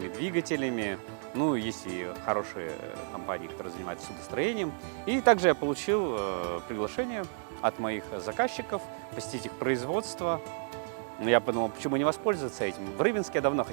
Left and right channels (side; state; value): left; silent; 57 dB below the other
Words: двигателями. Ну, есть и хорошие компании, которые занимаются судостроением. И также я получил приглашение от моих заказчиков посетить их производство. Я подумал, почему не воспользоваться этим. В Рыбинске я давно